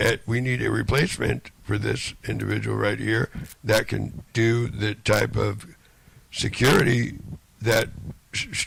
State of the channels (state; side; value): identical; both; correlation 1.00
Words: we need a replacement for this individual right here that can do the type of security that